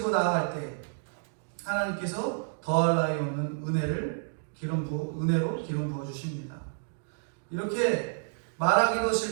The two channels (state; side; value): silent; left; digital silence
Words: 나아갈 때 하나님께서 더할 나위 없는 은혜로 기름 부어 주십니다. 이렇게 말하기도